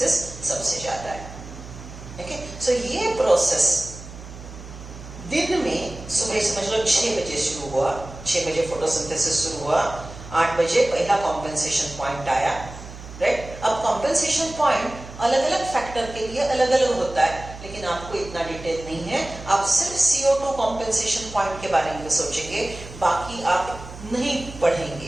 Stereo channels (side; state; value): right; noise; hum, 14 dB below the sound